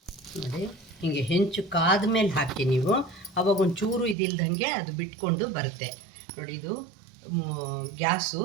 ನೋಡಿ ಹೀಗೆ ಹೆಂಚು ಕಾದ ಮೇಲೆ ಹಾಕಿ ನೀವು, ಅವಾಗ ಒಂಚೂರು ಇದಿಲ್ದಂಗೆ ಅದು ಬಿಟ್ಕೊಂಡು ಬರುತ್ತೆ. ನೋಡಿ ಇದು ಗ್ಯಾಸು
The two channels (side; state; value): left; drops out; at 4.2 s